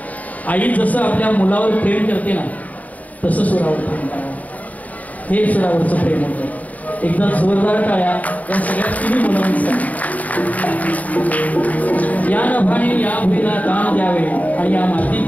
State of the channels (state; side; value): late; right; 0.073 ms